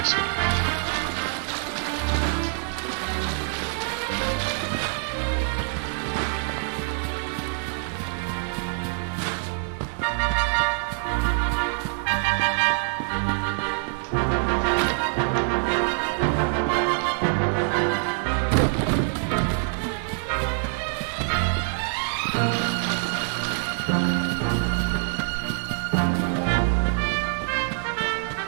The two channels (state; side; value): silent; left; 55 dB below the other